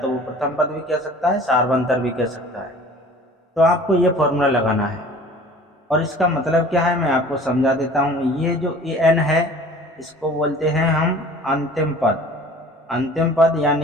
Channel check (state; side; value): normal; both; correlation 0.46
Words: वो प्रथम पद भी कह सकता है, सार्वंतर भी कह सकता है, तो आपको ये फॉर्मूला लगाना है। और इसका मतलब क्या है मैं आपको समझा देता हूँ। ये जो an है, इसको बोलते हैं हम अंतिम पद। अंतिम पद